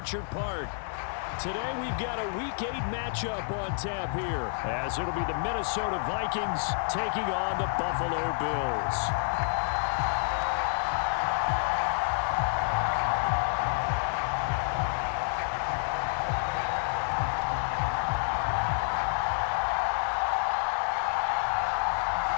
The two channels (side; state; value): right; silent; 59 dB below the other